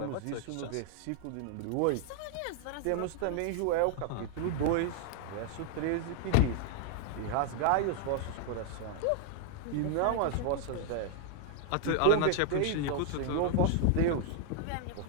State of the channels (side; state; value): both; different; correlation 0.00